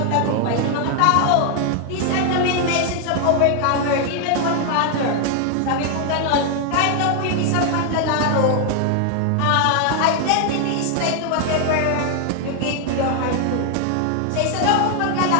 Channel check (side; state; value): both; different; correlation 0.00